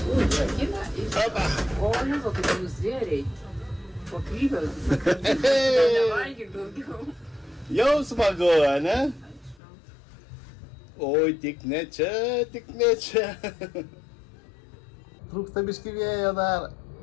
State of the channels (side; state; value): right; drops out; at 9.6 s